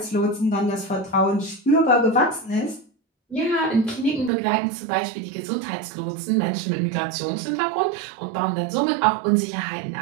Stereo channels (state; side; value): drops out; left; at 4.3 s